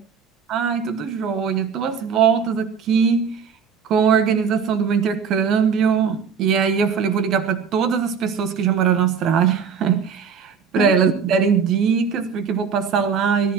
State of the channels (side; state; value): left; quieter; 6.5 dB